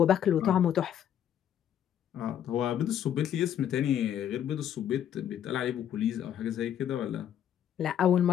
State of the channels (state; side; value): quieter; right; 10.0 dB